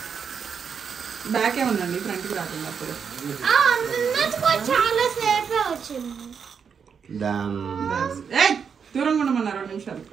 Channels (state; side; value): quieter; left; 6.6 dB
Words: Back ఉందండి, ఫ్రంట్ కి రాకుండా దూరంగా ఉండమన్నారు 2 నిమిషాలు.